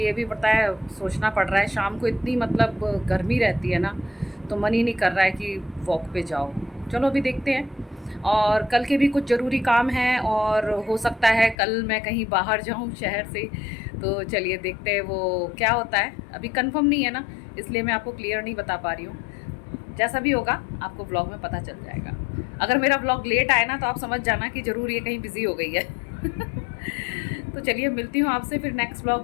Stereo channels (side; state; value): right; drops out; at 11.6 s